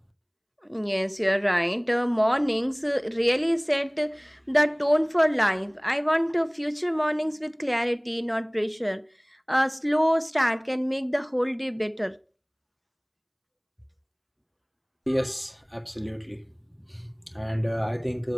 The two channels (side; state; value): both; identical; correlation 1.00